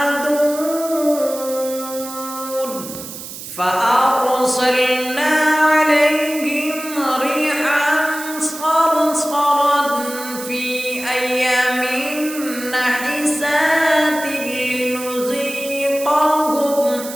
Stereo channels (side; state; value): right; noise; hiss, 11 dB below the sound